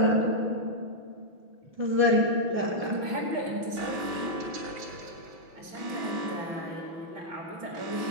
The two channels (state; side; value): late; left; 5.9 ms